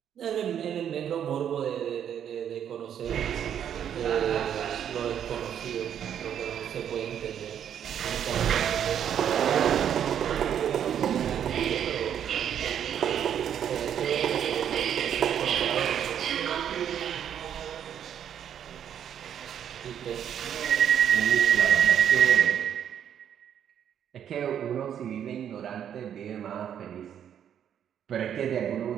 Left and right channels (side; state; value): left; quieter; 9.2 dB